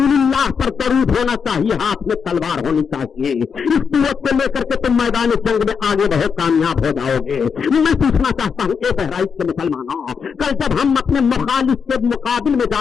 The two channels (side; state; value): right; quieter; 6.3 dB